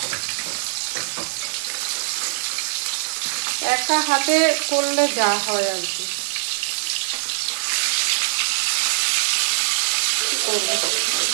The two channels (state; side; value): silent; left; digital silence